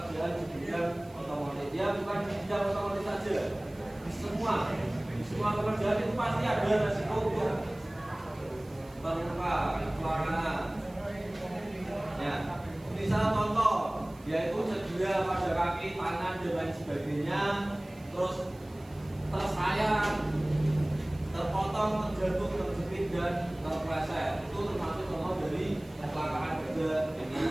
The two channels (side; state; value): right; noise; hiss, 27 dB below the sound